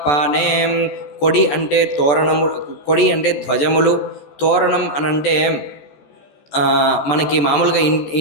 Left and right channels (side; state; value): right; late; 14 ms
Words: కొడి అంటే తోరణము, కొడి అంటే ధ్వజములు, తోరణం అనంటే మనకి మామూలుగా